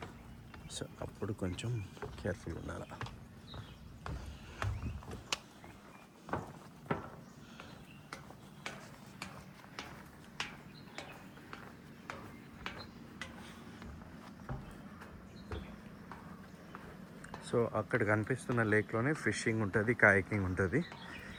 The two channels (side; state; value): both; identical; correlation 1.00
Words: సో అప్పుడు కొంచెం కేర్ఫుల్గా ఉండాలి. సో అక్కడ కనిపిస్తున్న లేక్లోనే ఫిషింగ్ ఉంటుంది, కాయకింగ్ ఉంటుంది.